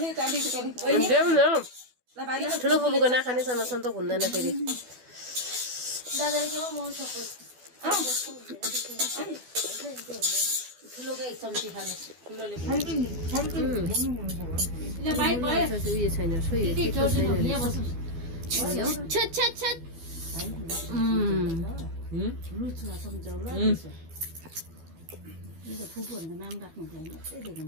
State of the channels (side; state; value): left; late; 12 ms